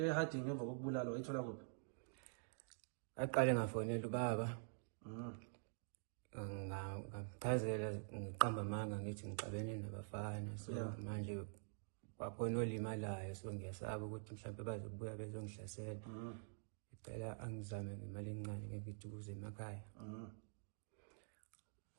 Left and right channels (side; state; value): left; silent; digital silence